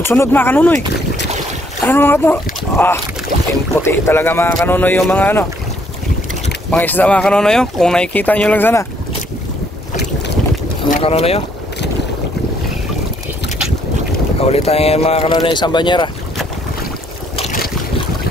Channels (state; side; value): normal; both; correlation 0.67